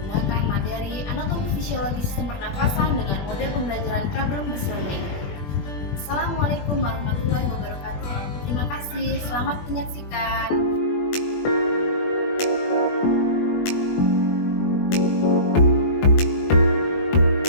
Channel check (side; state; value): right; late; 21 ms